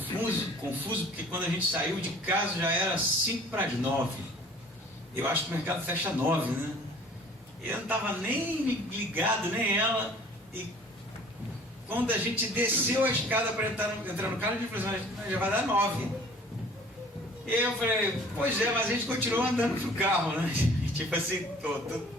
porque quando a gente saiu de casa já era 8:55. Eu acho que o mercado fecha 9, né? Eu não estava nem ligado, nem ela. E quando a gente desceu a escada para entrar no carro, a gente falou assim, já vai dar 9. E eu falei, pois é, mas a gente continuou andando pro carro, né? Tipo assim, todo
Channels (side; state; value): both; normal; correlation 0.50